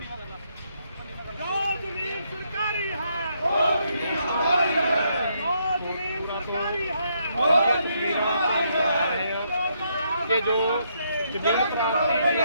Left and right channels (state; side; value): inverted; both; correlation -0.75